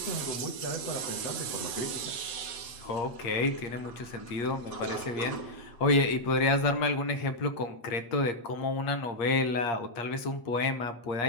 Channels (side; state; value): right; late; 8.5 ms